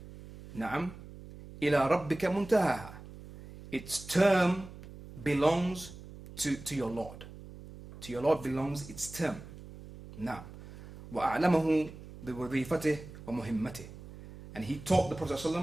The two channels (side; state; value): right; noise; hum, 15 dB below the sound